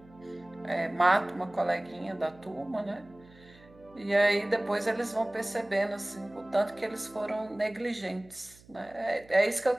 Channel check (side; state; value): right; noise; hum, 25 dB below the sound